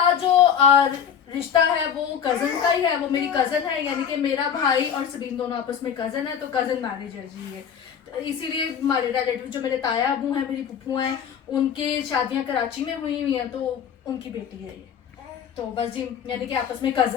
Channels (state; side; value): quieter; right; 8.1 dB